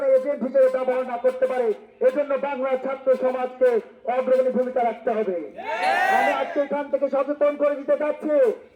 এজেন্ট হিসেবে ব্যবহার না করতে পারে, এজন্য বাংলার ছাত্র সমাজকে অগ্রণী ভূমিকা রাখতে হবে। আমি আজকে এখান থেকে সচেতন করে দিতে চাচ্ছি,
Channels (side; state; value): both; identical; correlation 1.00